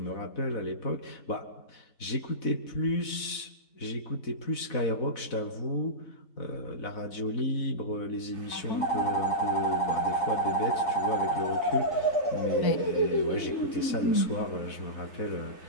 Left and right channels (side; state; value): right; late; 4.1 ms